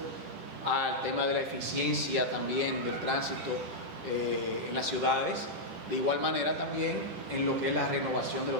al tema de la eficiencia también del tránsito en las ciudades, de igual manera también en lo que es la renovación de los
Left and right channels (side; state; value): left; late; 10 ms